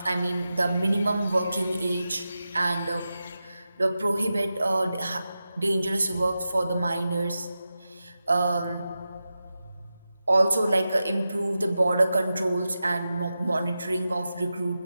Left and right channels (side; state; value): both; inverted; correlation -0.91